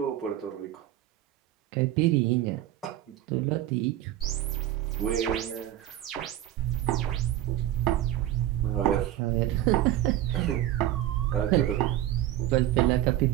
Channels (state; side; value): quieter; left; 13.2 dB